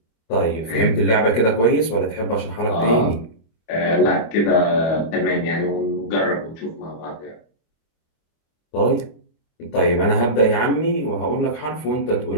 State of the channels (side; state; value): right; late; 25 ms